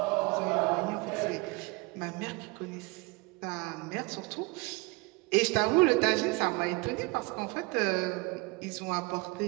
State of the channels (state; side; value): quieter; left; 26.6 dB